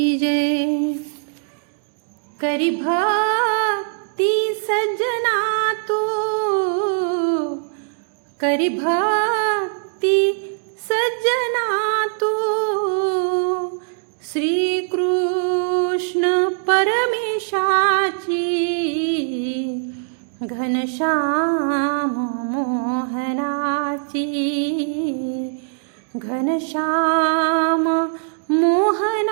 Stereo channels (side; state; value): left; silent; 65 dB below the other